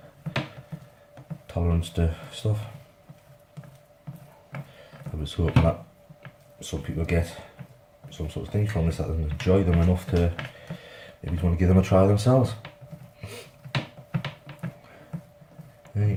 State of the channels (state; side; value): identical; both; correlation 1.00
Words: tolerance to stuff. I was hoping that some people get some sort of things from this that they enjoy them enough to maybe want to give them a try themselves. You